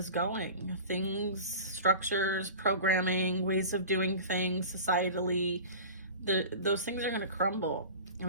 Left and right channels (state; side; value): inverted; both; correlation -0.36